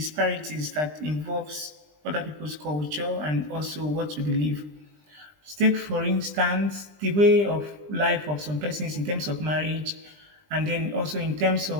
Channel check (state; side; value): late; left; 20 ms